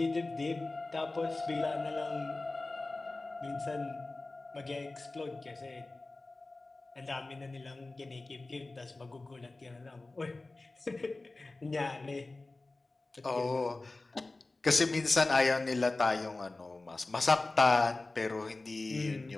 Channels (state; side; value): quieter; right; 3.2 dB